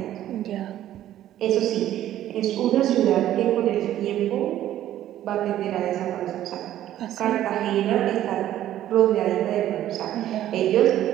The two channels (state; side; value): quieter; left; 12.5 dB